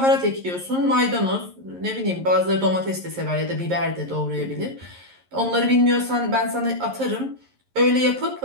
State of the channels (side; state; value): left; late; 11 ms